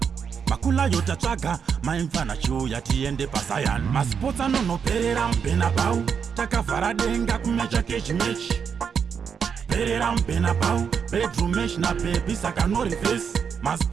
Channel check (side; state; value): left; quieter; 6.8 dB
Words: Makula yotatsvaga, maimfana chiuya tiende paSion. Masports anonoperera muBernabeu, takavhara denga kumecha kechimechi. Perera muBernabeu, bedroom mesh na baby saka no reverse.